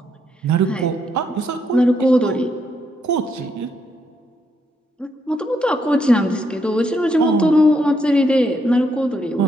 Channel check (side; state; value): both; normal; correlation 0.76